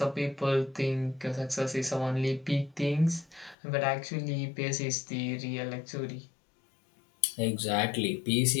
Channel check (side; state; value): right; drops out; at 3.6 s